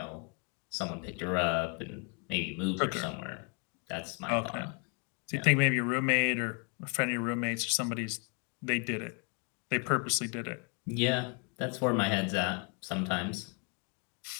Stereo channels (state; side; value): quieter; right; 36.3 dB